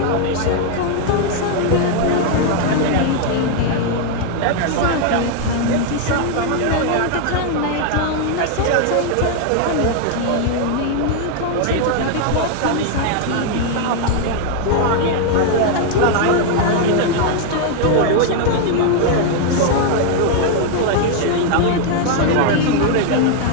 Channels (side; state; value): both; different; correlation 0.00